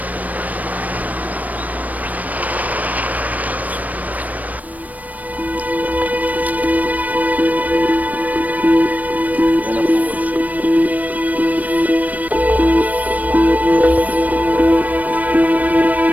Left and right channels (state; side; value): late; left; 0.074 ms